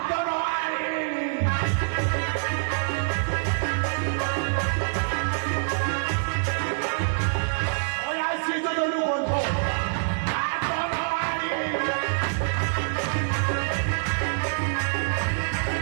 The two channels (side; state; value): left; silent; 60 dB below the other